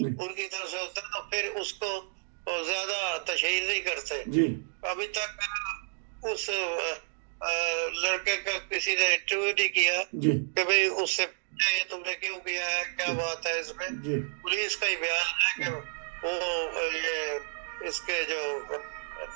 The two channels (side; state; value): left; silent; digital silence